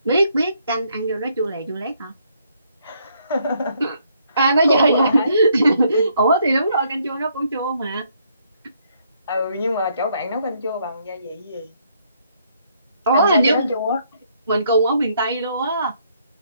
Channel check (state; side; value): inverted; both; correlation -0.70